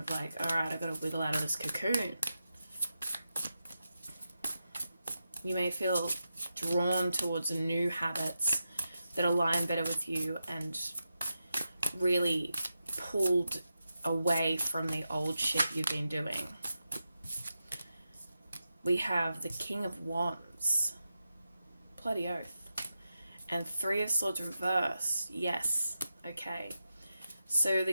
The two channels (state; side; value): inverted; both; correlation -0.89